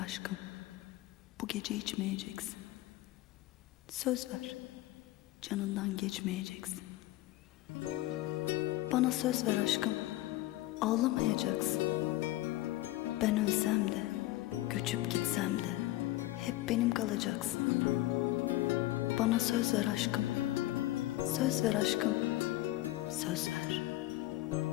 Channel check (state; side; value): quieter; right; 17.2 dB